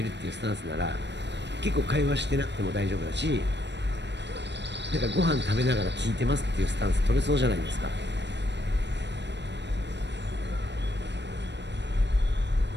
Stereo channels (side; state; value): left; late; 0.51 ms